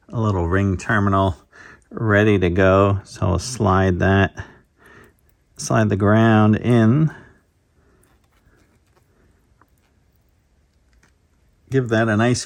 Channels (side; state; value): both; identical; correlation 1.00